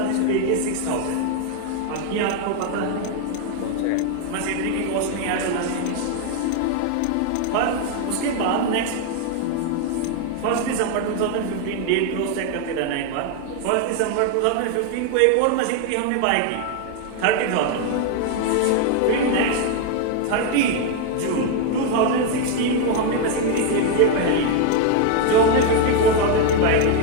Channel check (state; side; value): different; both; correlation 0.01